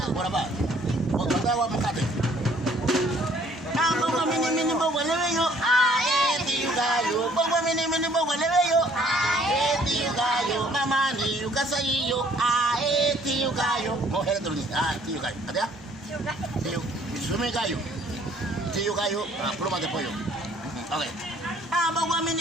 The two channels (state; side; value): normal; both; correlation 0.60